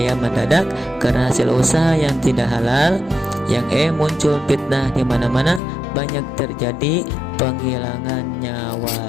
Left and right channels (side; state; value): right; drops out; at 5.6 s